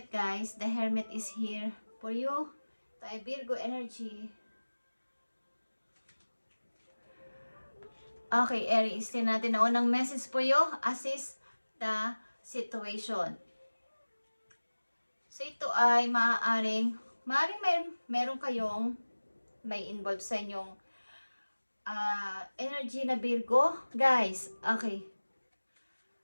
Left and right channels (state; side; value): inverted; both; correlation -1.00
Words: guys. The Hermit is here for you. Tayo Virgo energy. Okay, Aries. Tingnan natin ang unang message po you. Assist the situation. So, ito ay maaaring meron kayong may involved sa inyong energy na Virgo. Guys, okay.